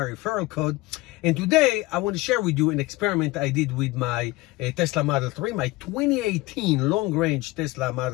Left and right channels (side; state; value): right; quieter; 20.8 dB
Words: referral code. And today, I want to share with you an experiment I did with my Tesla Model 3, my 2018 long-range Tesla